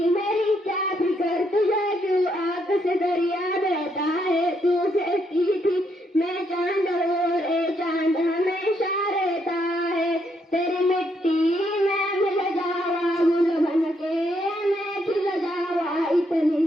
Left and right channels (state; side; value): normal; both; correlation 0.75